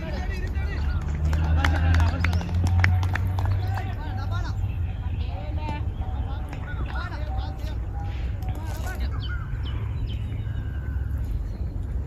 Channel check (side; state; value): both; identical; correlation 1.00